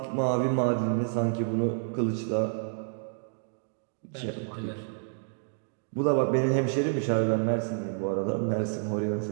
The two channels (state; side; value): silent; left; digital silence